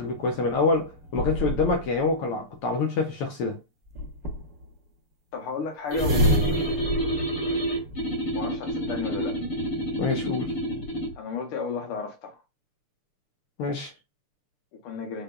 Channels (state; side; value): late; right; 6.8 ms